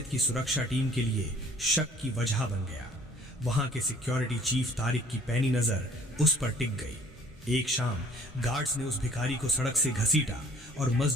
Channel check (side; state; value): both; normal; correlation 0.56